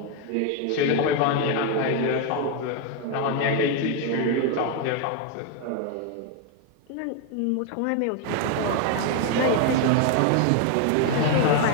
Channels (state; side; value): different; both; correlation 0.01